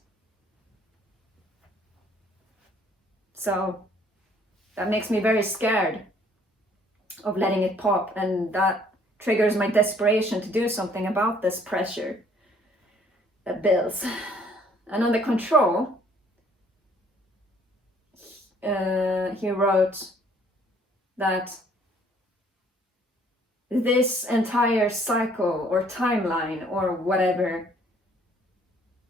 So that makes me very scared of letting it pop, and that triggers my desperation to do something about this pressure that builds. And on the control, he wrote that this entire cycle or timeline or whatever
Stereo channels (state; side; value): normal; both; correlation 0.61